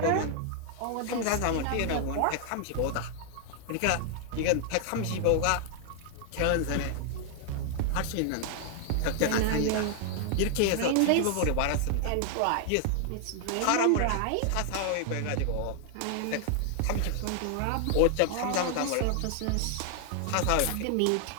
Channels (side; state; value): both; different; correlation 0.00